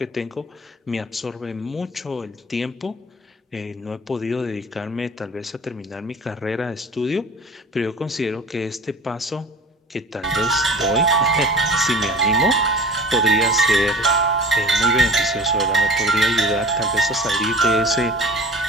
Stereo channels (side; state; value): both; normal; correlation 0.41